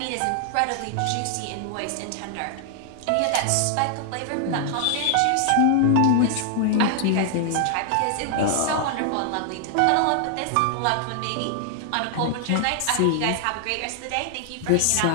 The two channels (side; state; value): both; different; correlation 0.00